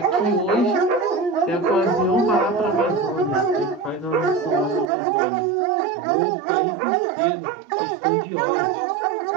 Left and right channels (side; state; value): left; drops out; at 4.9 s